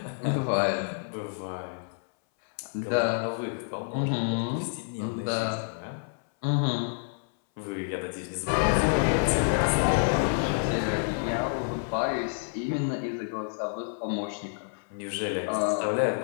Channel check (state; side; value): silent; right; 59 dB below the other